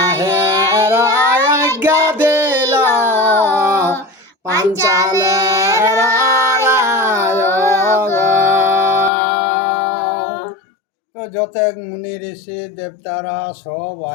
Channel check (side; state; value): right; drops out; at 9.1 s